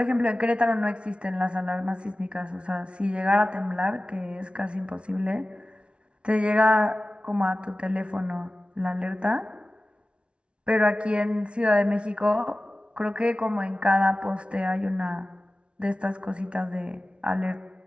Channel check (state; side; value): late; left; 0.059 ms